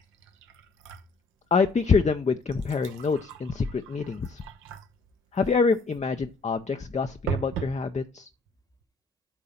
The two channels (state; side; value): quieter; right; 4.0 dB